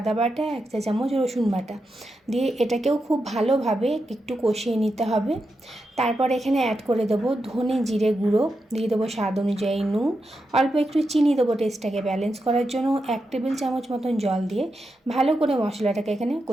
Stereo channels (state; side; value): normal; both; correlation 0.87